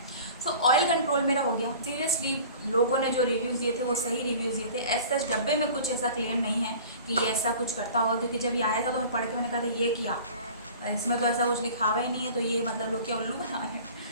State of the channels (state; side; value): inverted; both; correlation -0.43